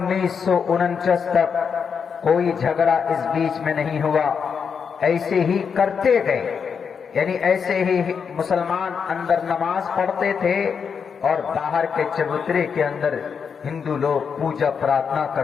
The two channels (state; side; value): quieter; right; 6.4 dB